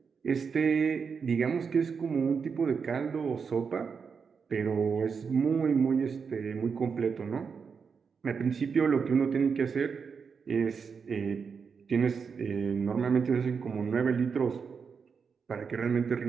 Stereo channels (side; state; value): left; quieter; 5.9 dB